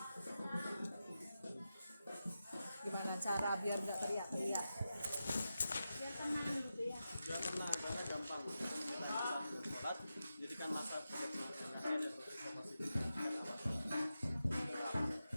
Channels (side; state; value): both; inverted; correlation -0.91